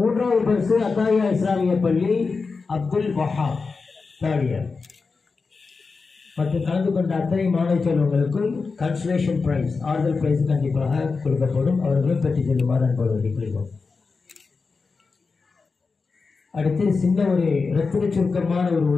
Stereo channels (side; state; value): right; quieter; 4.5 dB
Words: பரிசு அத்தாயா இஸ்லாமிய பள்ளி அப்துல் வஹாப் 3rd இயர். மற்றும் கலந்து கொண்ட அத்தனை மாணவ செல்வங்களுக்கும் கன்சலேஷன் பிரைஸ், ஆறுதல் பிரைஸ் கண்டிப்பாக கொடுக்கப்படும். அவர்களும் பெற்று செல்லுமாறு அன்போடு வேண்டிக்கொள்கிறோம். அடுத்து சின்ன ஒரு இரத்தின சுருக்கமான ஒரு